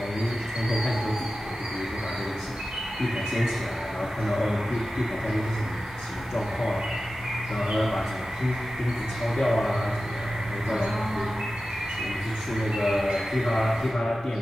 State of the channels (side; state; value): both; normal; correlation 0.94